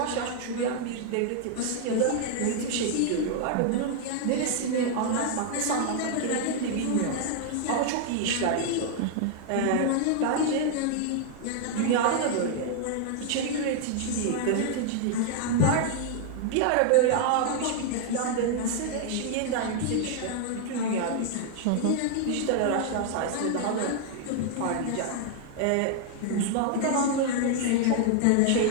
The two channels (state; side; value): different; both; correlation 0.00